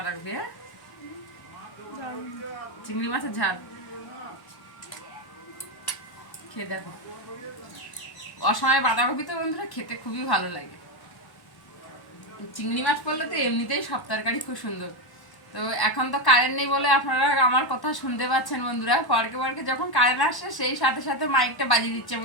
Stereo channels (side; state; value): right; late; 1.1 ms